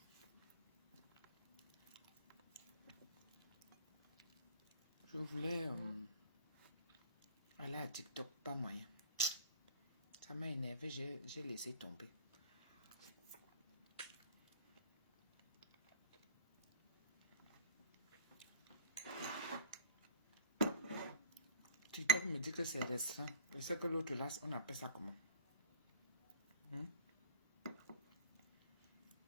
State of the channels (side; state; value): both; inverted; correlation -0.46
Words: Je voulais aller à TikTok, pas moyen. Ça m'a énervé, j'ai laissé tomber. TikTok me dit que c'est restreint. Je sais que l'autre là, on appelle ça comment?